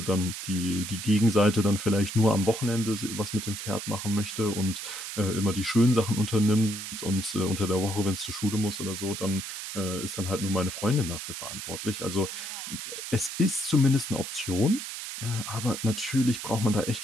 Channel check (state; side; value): noise; right; hiss, 7 dB below the sound